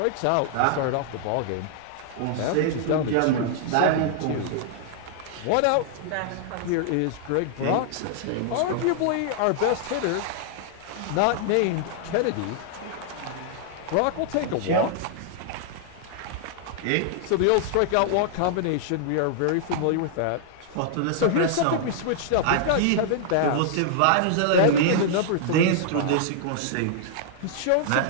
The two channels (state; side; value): different; both; correlation -0.01